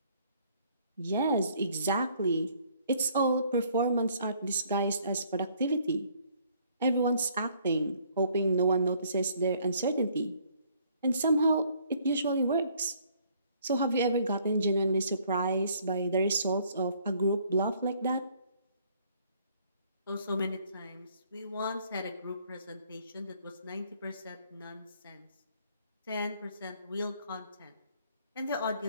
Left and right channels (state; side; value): inverted; both; correlation -0.62